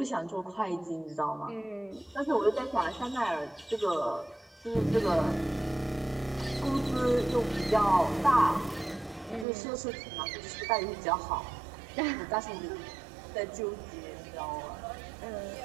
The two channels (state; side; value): drops out; left; at 9.5 s